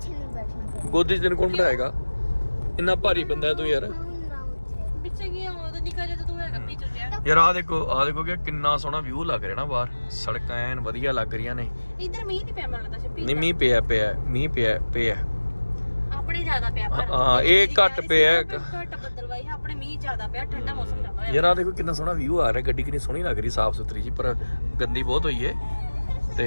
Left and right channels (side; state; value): both; inverted; correlation -1.00